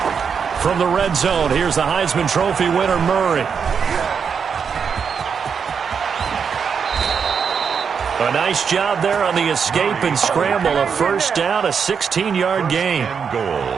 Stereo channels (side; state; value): left; quieter; 6.5 dB